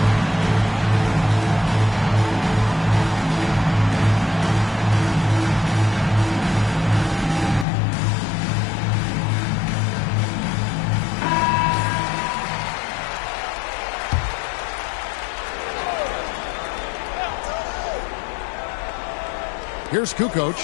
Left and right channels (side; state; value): right; drops out; at 7.7 s